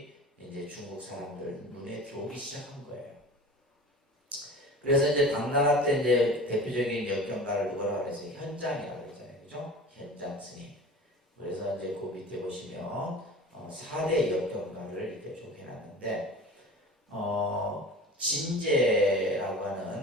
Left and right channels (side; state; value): both; normal; correlation 0.38